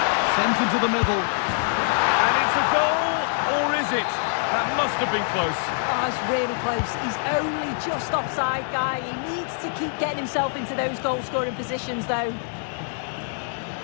Sent into the middle. And it's a goal, or is it? That must have been close. Oh, it's really close. He's only just offside, guy. He needs to keep getting himself into those goal-scoring positions, though.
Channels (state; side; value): silent; right; 58 dB below the other